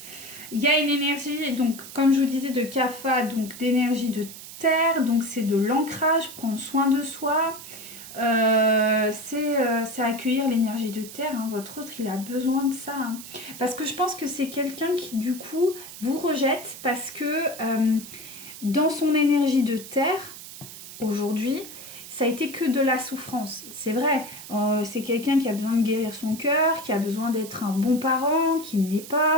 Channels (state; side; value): noise; right; hiss, 14 dB below the sound